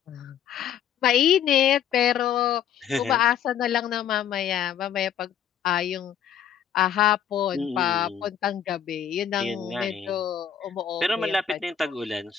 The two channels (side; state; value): right; quieter; 9.0 dB